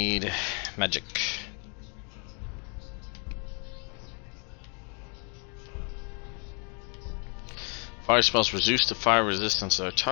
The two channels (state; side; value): quieter; right; 37.2 dB